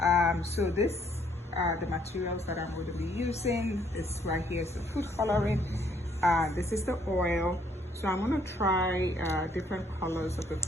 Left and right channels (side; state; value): both; normal; correlation 0.66